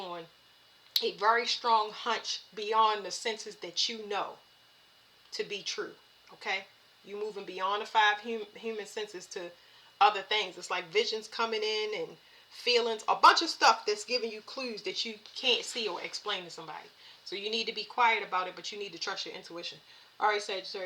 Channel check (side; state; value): both; identical; correlation 1.00